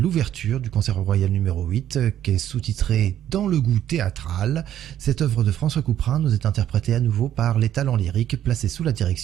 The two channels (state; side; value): quieter; left; 11.2 dB